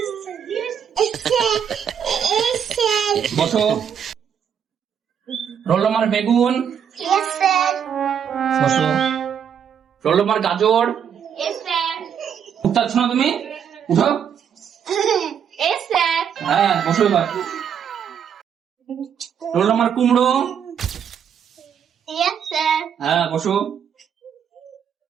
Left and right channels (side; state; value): left; quieter; 8.1 dB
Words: বসো। রোল নম্বর বেগুন, বসো। রোল নম্বর গাজর, Yes, sir. উঠতে পারছো না তুমি? উঠো। Yes, sir. হ্যাঁ বসো এবার। রোল নম্বর কুমড়ো, Yes, sir. হ্যাঁ বসো।